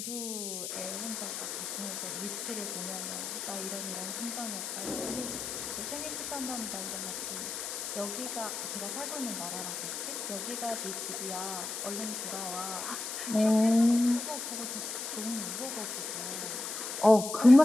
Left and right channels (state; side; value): noise; left; hiss, 5 dB below the sound